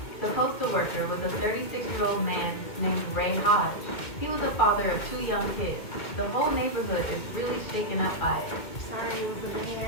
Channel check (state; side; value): late; right; 2.1 ms